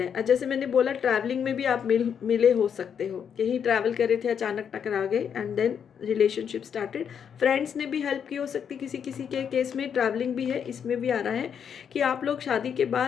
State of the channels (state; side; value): quieter; right; 7.7 dB